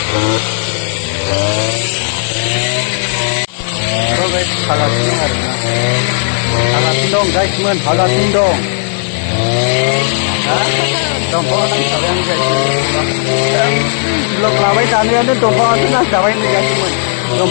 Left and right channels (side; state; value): right; silent; digital silence